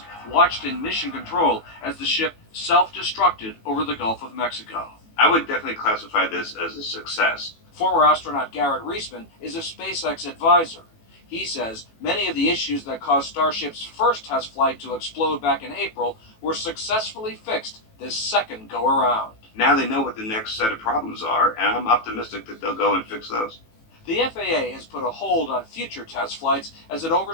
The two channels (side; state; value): right; late; 18 ms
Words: watched in mission control as the ship self-destructed over the Gulf of Mexico. I would definitely classify this as a success. Former astronaut Garrett Reisman is a SpaceX advisor. He says many of the issues that caused Starship's first test flight to explode back in April were successfully fixed this second go-around. Now they know what the next set of problems are, and I'm optimistic that they'll go and fix those. The FAA has put a hold on future test flights as it